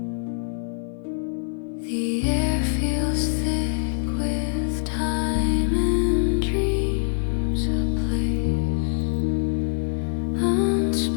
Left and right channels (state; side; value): silent; right; 58 dB below the other